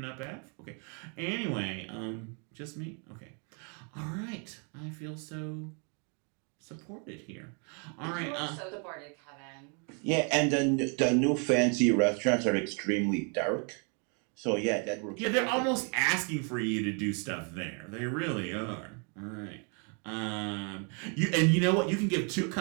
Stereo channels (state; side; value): quieter; left; 37.7 dB